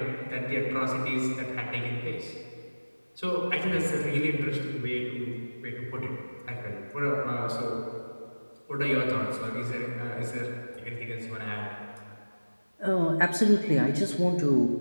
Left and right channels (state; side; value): inverted; both; correlation -1.00